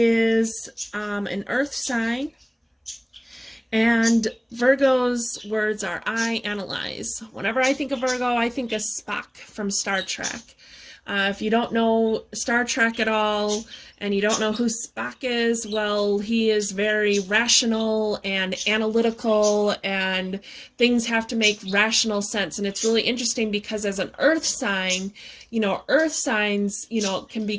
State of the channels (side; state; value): both; identical; correlation 1.00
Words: an earth sign. And Virgo's words are, I analyze. Whenever I think of Virgo, I think of Spock from Star Trek. If you don't know Star Trek at all, and you don't know who Spock is, well, he is very rational and analytical, and things have to make rational sense. And it's really interesting because as an earth sign, earth signs,